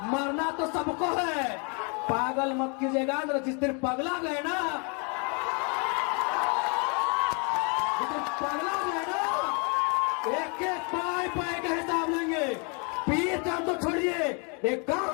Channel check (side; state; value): right; quieter; 35.1 dB